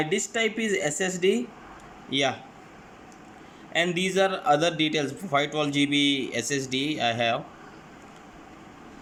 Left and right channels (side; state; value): both; identical; correlation 1.00